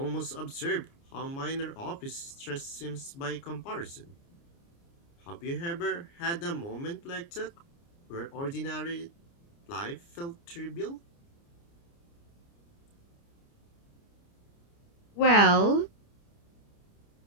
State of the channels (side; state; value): right; late; 29 ms